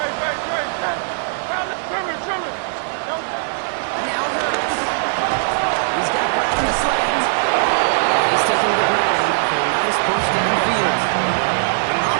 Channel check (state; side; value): silent; left; digital silence